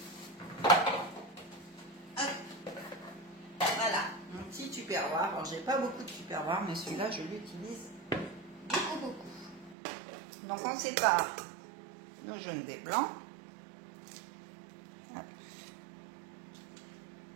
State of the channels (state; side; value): drops out; left; at 9.8 s